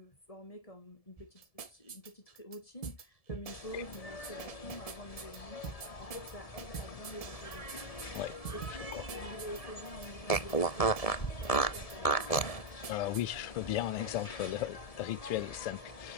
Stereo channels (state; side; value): late; right; 1.7 ms